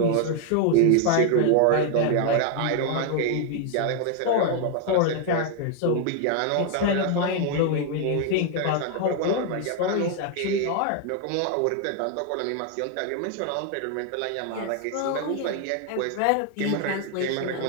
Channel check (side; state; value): both; different; correlation 0.00